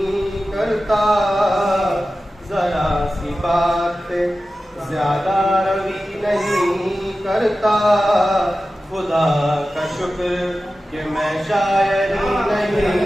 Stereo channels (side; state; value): both; normal; correlation 0.94